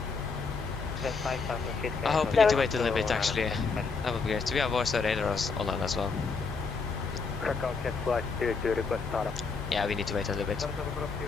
I hope we need to wait a little bit actually. That would be great. We have voice radars online as well. Krakow, check flight 22, request startup. Yeah, we need to wait a little bit.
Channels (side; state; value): right; quieter; 4.7 dB